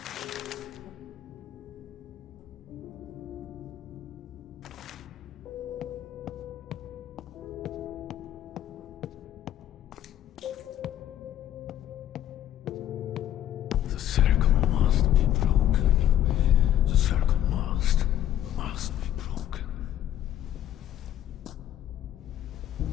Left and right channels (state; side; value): quieter; right; 11.6 dB